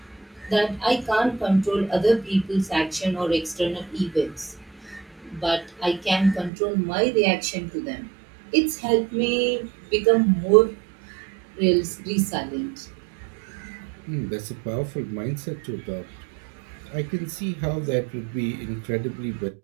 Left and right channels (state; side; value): drops out; left; at 6.5 s